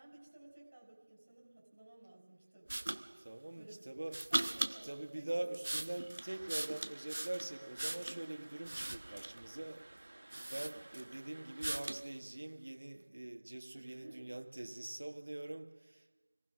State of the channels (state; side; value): inverted; both; correlation -1.00